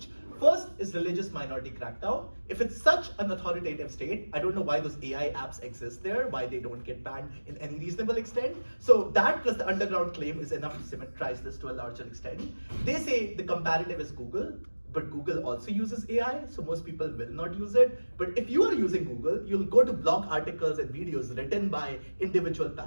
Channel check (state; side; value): inverted; both; correlation -1.00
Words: First is religious minority crackdown. If it's such an authoritative state, I don't know why those AI apps exist there, why they don't get banned in any reasonable extent. So that plus the underground claim is enough to symmetrize this to a larger extent. They say the comparative is Google, but Google also uses AI, so most people will not use it. But if you are using Google, you'll go to blog articles and videos written by individual